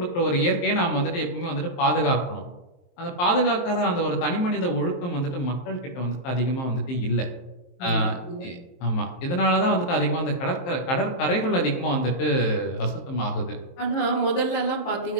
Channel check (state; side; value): late; right; 23 ms